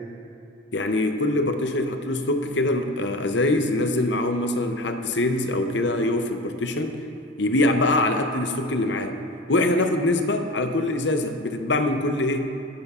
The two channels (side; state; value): both; normal; correlation 0.32